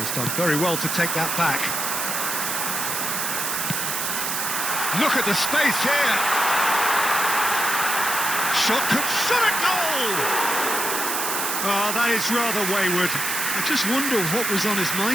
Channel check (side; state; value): right; noise; hiss, 1 dB below the sound